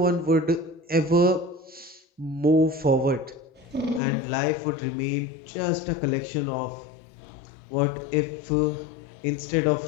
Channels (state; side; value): drops out; right; at 4.0 s